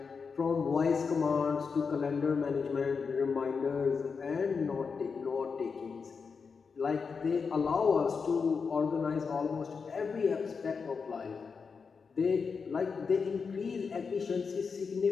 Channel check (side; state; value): right; quieter; 5.4 dB